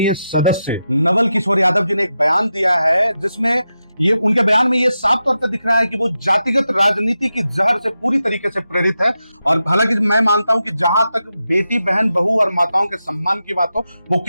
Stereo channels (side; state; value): both; inverted; correlation -0.89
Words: सदस्य नवल किशोर यादव जी ने एक बयान दिया है, जिसमें ये उनके बयान में ये साफ तौर पर दिख रहा है कि वो जातिगत राजनीति की जहर से पूरी तरीके से प्रेरित है। और हालांकि मैं मानता हूं कि जहां तक बेटी, बहन, बहू और माताओं के सम्मान की बात हो, वो